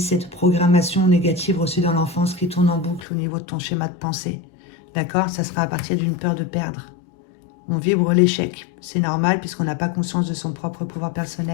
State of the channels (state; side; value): drops out; right; at 3.1 s